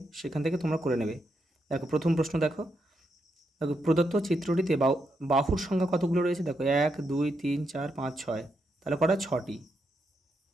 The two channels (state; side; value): normal; both; correlation 0.82